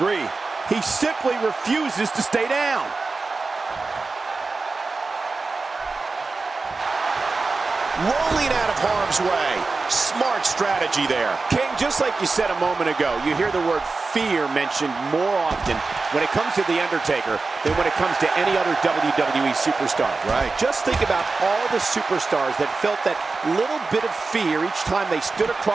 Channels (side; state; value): left; quieter; 3.9 dB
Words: He simply refuses to stay down. Rolling out of harm's way. Smart strategy there. King, just like you said a moment ago, you hear the word fear mentioned more often when it comes to The Undertaker than when it comes to any other WWE superstar. Right. Just think about all the superstars that felt that little bit of fear each time they stood